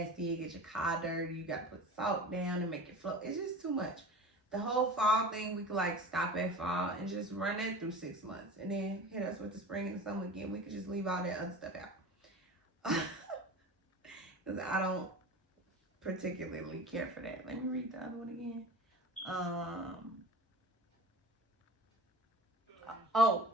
it gets your car dirty, you got to put salt down and make it float. It's just too much. The whole fall thing, we could like stop at fall and just run that through 6 months. And then hit us with the spring and summer again. We could just leave all that other stuff out. Because I don't particularly care for that. Let me read the other one again.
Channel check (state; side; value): normal; both; correlation 0.36